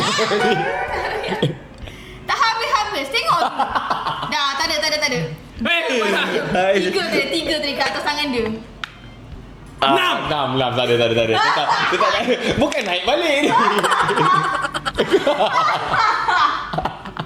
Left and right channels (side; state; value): both; identical; correlation 1.00